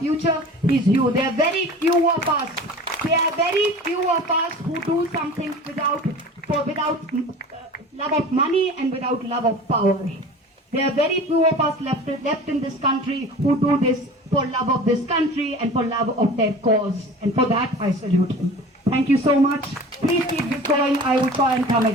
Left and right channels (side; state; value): both; normal; correlation 0.39